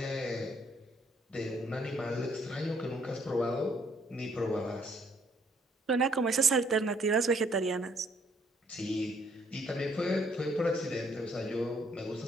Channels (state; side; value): normal; both; correlation 0.67